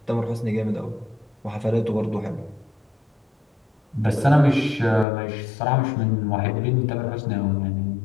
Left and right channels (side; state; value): right; drops out; at 5.1 s